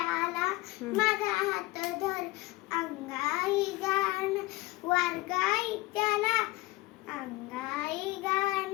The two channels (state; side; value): quieter; right; 19.5 dB